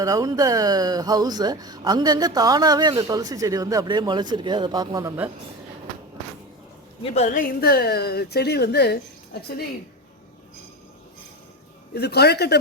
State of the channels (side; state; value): both; normal; correlation 0.24